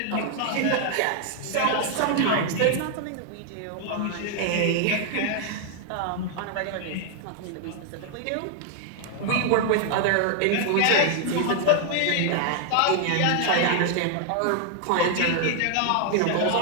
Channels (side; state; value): both; different; correlation 0.00